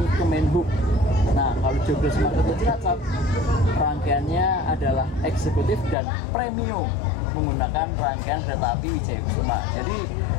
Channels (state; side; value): drops out; right; at 6.0 s